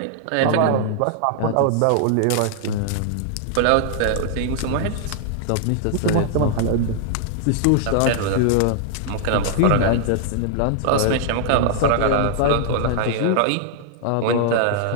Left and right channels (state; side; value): different; both; correlation -0.01